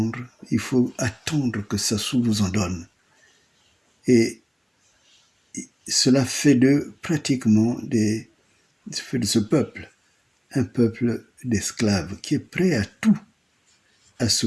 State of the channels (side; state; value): both; identical; correlation 1.00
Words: il faut attendre que Sassou vous en donne. Et cela fait de pratiquement fait de ce peuple un peuple d'esclaves qui est prêt à tout, à se